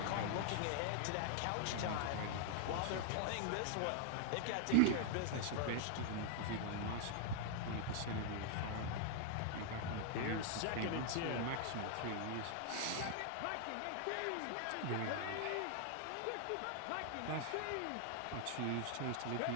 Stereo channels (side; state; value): both; different; correlation -0.01